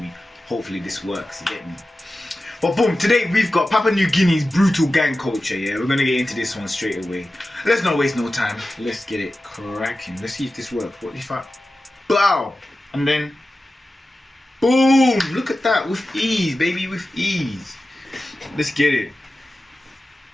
Hopefully this works, you get me? But boom, today we've got Papua New Guinea's brutal gang culture, yeah? We're gonna get into this one straight away. Let's not waste no time. Let's get it cracking. Let's see if this works. What if I... Bow! And then... Boom! Look at that, with ease, baby, with ease. Let's get it.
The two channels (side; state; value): both; normal; correlation 0.94